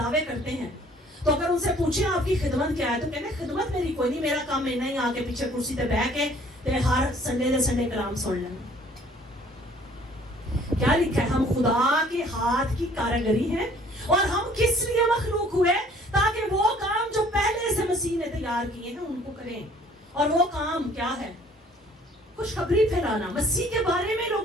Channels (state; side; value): normal; both; correlation 0.56